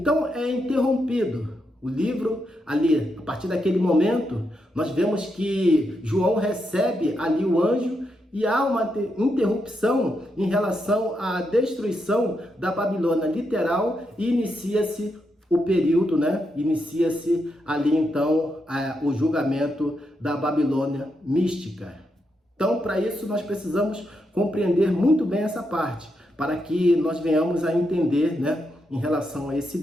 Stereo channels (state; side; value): normal; both; correlation 0.82